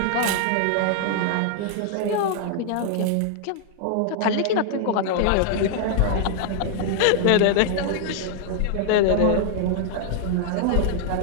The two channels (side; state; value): both; different; correlation 0.00